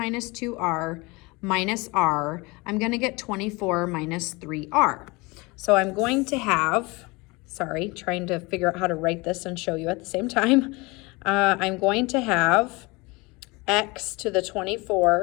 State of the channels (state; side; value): quieter; right; 25.1 dB